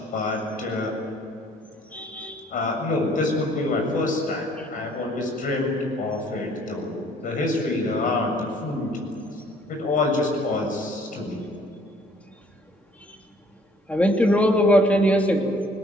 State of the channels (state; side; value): normal; both; correlation 0.58